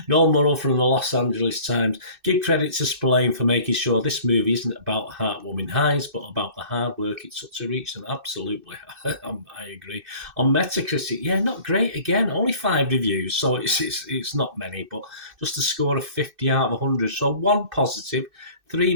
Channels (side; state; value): left; late; 2.6 ms